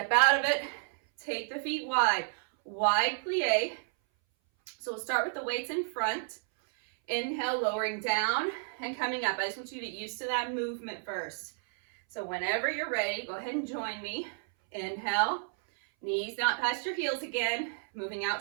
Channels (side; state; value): left; silent; 57 dB below the other